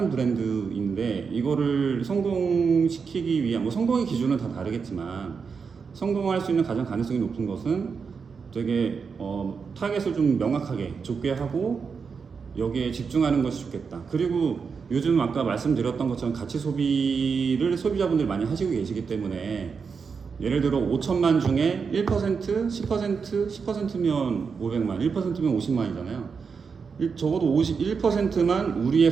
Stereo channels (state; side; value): quieter; left; 5.6 dB